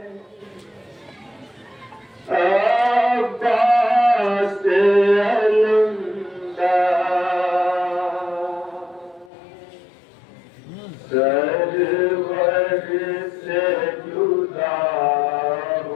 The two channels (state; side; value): drops out; right; at 9.3 s